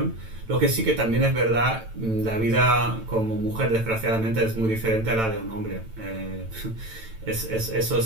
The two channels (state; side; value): late; left; 9.0 ms